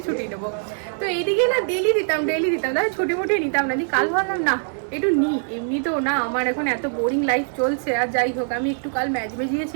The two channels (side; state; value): left; silent; 64 dB below the other